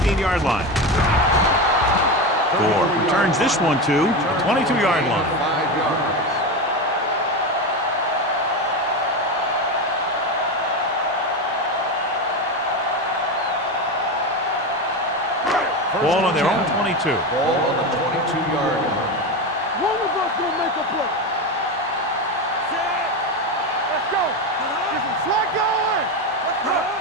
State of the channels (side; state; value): both; normal; correlation 0.18